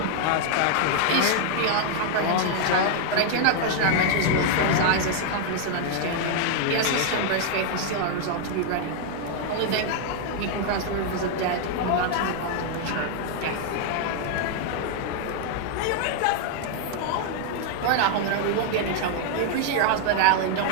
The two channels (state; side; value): different; both; correlation 0.00